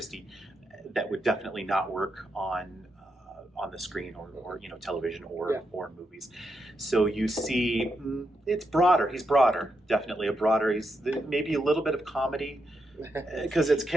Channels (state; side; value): normal; both; correlation 0.83